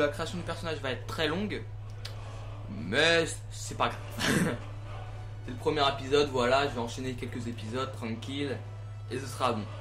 création du personnage va être très longue, mais c'est pas grave. C'est le premier épisode, voilà, je vais enchaîner quelques épisodes tranquille et ce sera bon.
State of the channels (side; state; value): both; identical; correlation 1.00